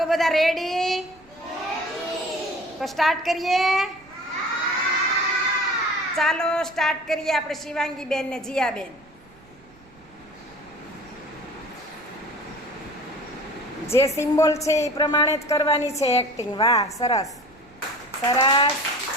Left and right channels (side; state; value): right; noise; rumble, 27 dB below the sound